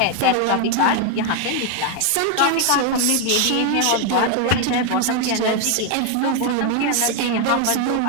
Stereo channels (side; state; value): both; different; correlation 0.01